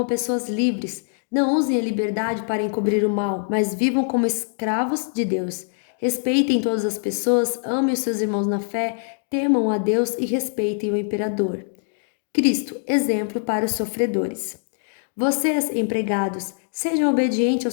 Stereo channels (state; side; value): silent; right; digital silence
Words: pessoas livres. Não usem a liberdade para encobrir o mal, mas vivam como escravos de Deus. Respeitem todas as pessoas, amem os seus irmãos na fé, temam a Deus e respeitem o imperador. Cristo, exemplo para os sofredores. Vocês, empregados, sejam obedientes